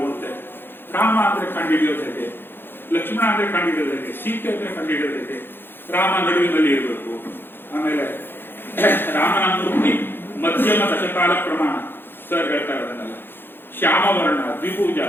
ಓದ್ತೇನೆ. ರಾಮ ಅಂದ್ರೆ ಕಂಡುಹಿಡಿಯೋದು ಹೇಗೆ, ಲಕ್ಷ್ಮಣ ಅಂದ್ರೆ ಕಂಡುಹಿಡಿಯೋದು ಹೇಗೆ, ಸೀತೆ ಅಂದ್ರೆ ಕಂಡುಹಿಡಿಯೋದು ಹೇಗೆ, ರಾಮ ನಡುವಿನಲ್ಲಿ ಇರಬೇಕು. ಆಮೇಲೆ ರಾಮನ ಮೂರ್ತಿ ಮಧ್ಯಮ ದಶಕಾಲ ಪ್ರಮಾಣ ಸರ್ ಹೇಳ್ತಾರೆ, ಅದನ್ನೆಲ್ಲ ಶ್ಯಾಮವರ್ಣ, ದ್ವಿಭುಜ,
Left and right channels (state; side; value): late; right; 0.10 ms